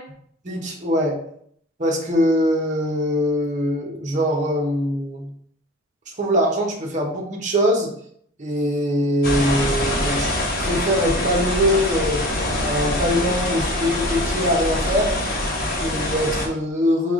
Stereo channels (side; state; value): both; normal; correlation 0.39